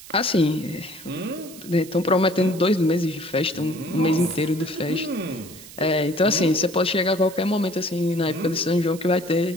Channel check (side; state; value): right; noise; hiss, 17 dB below the sound